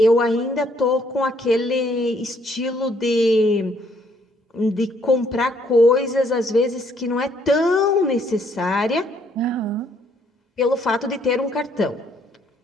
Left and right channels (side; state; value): both; normal; correlation 0.67